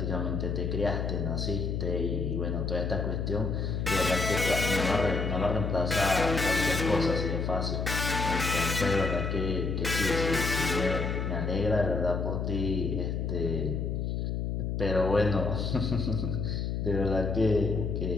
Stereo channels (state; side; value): noise; left; hum, 1 dB below the sound